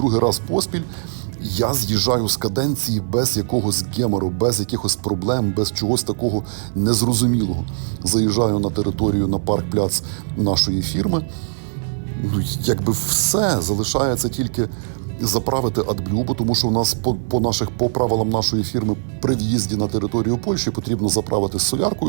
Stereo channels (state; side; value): silent; left; 65 dB below the other